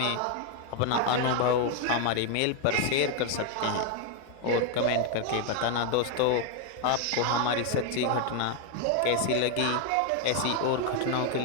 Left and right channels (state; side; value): different; both; correlation 0.01